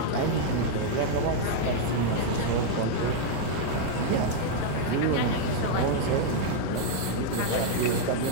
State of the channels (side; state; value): both; different; correlation -0.01